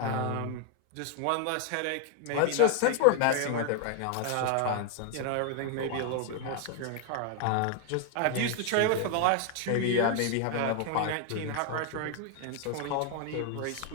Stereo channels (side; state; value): both; different; correlation 0.00